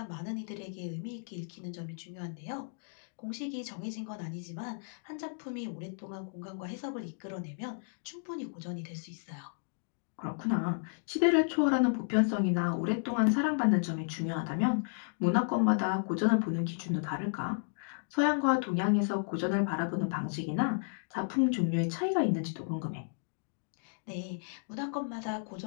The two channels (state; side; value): silent; right; digital silence